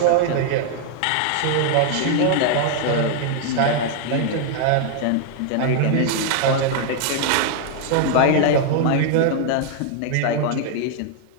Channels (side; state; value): both; different; correlation 0.00